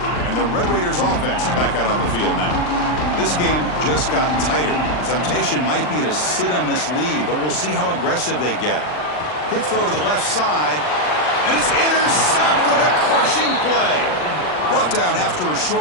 And the Red Raiders offense is back out on the field now. This game just got tighter. The temptation might be to sit on this lead, but we'll see how aggressive they get. Quick throw to the left side, and it's intercepted. A crushing play. Brought down after a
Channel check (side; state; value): right; late; 39 ms